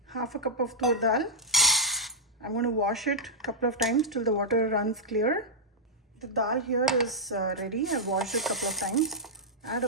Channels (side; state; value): both; normal; correlation -0.06